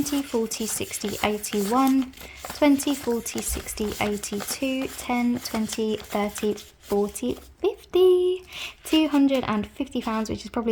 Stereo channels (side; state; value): both; identical; correlation 1.00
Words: 40, 60, 81, 20, 40, 60, 82, 10, 20, 30, 40, 50, £250, which is